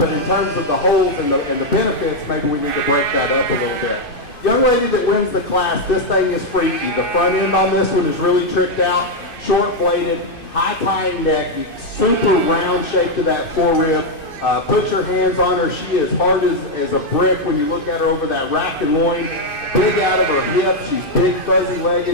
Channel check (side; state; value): right; late; 2.6 ms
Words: in terms of the holes and the benefits, maybe we need to break that up a little bit. Young lady that wins the class, this thing is freaky. The front end on this one is really tricked out, short-bladed, high-tying neck, super round shape to that forerib. Put your hands on her. She is hard as a brick when you look at her over that rack and loin. Big out of her hip. She's big,